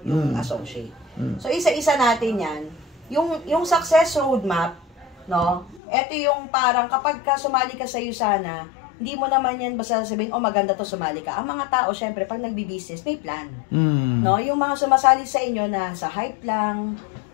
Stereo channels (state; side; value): drops out; right; at 5.8 s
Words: yung associate. So, isa-isa natin yan. Yung success roadmap, no? Ito yung parang kapag sumali ka sa USANA, hindi mo naman yan basta sabihin, maganda to, sumali ka. Ang mga tao, syempre, pag nagbi-business, may plan. No? Yung mga sumasali sa inyo na sa hype lang,